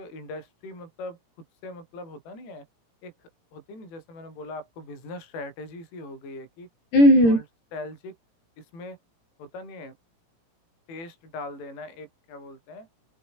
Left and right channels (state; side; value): late; right; 18 ms